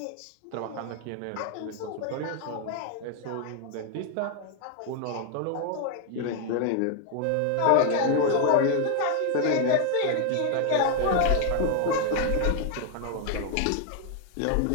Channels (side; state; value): both; different; correlation 0.00